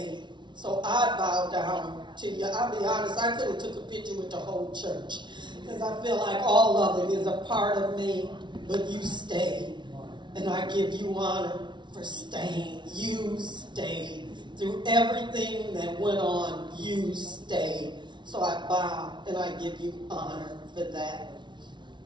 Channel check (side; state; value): left; late; 0.23 ms